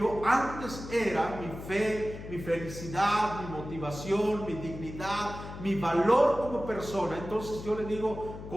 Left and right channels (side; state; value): left; noise; hum, 11 dB below the sound